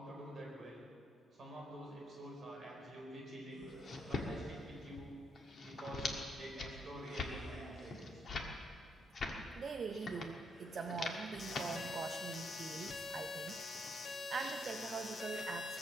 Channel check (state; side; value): normal; both; correlation 0.75